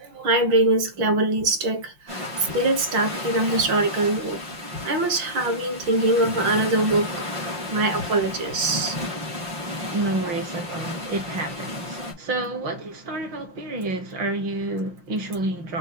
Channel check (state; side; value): late; left; 5.7 ms